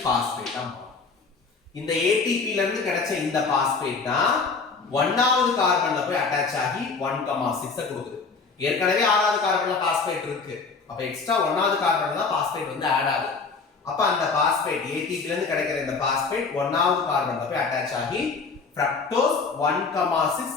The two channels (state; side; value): quieter; right; 4.7 dB